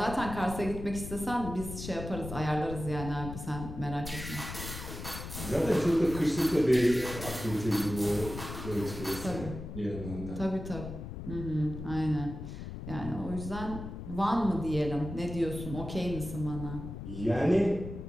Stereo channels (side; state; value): left; noise; rumble, 9 dB below the sound